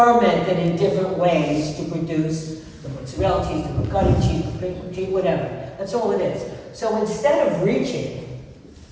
in different ways to produce the mozzarella cheese, the ricotta cheese, the cream cheese, whatever. That's all it is. So instead of reaching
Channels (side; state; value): both; identical; correlation 1.00